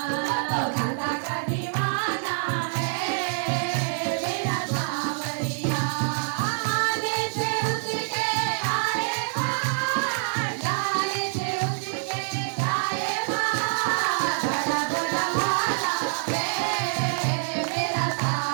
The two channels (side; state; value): left; silent; 61 dB below the other